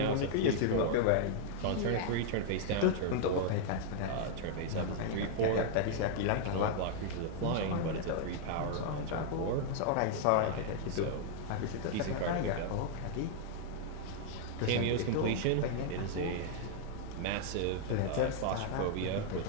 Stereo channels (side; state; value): both; different; correlation -0.01